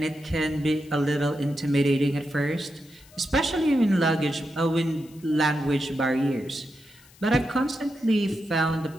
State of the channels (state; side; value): noise; left; hiss, 26 dB below the sound